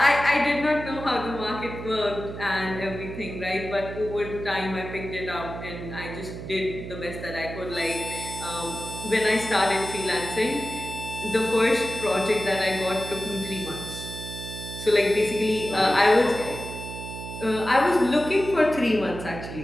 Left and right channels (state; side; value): noise; right; hum, 9 dB below the sound